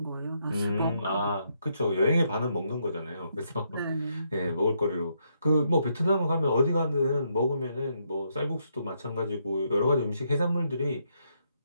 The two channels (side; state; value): both; inverted; correlation -0.76